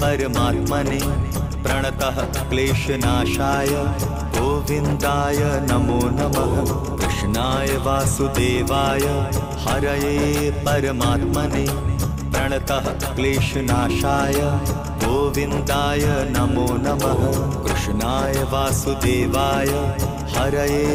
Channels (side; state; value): both; identical; correlation 1.00